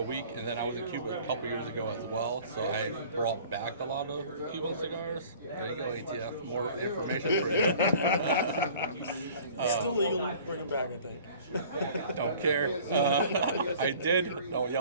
week, and then I was in Cuba a couple years ago as well. So I brought back a lot of Cuban cigars. There you go, ATF. More information for you. Still legal. Bring them back, I think. Don't care. I did. Don't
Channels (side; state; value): both; inverted; correlation -0.48